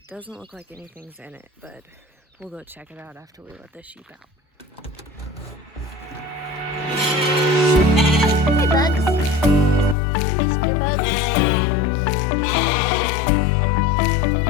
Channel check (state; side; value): drops out; right; at 10.0 s